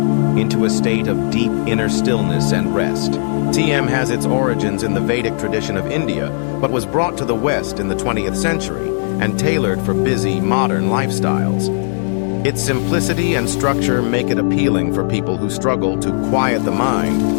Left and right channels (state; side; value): silent; right; digital silence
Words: into a state of deep inner stillness and rest. TM has its origins in the Vedic tradition of India, but was brought to the West in the 20th century and tailored for busy, modern lifestyles. Its simplicity and structure make it appealing for people who struggle to quiet the